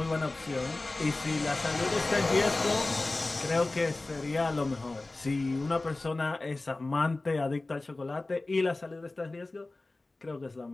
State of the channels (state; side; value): quieter; right; 3.1 dB